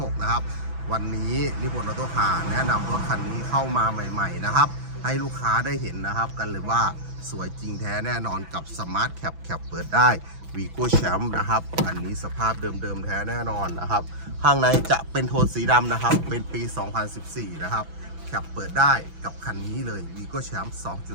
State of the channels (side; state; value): left; late; 6.0 ms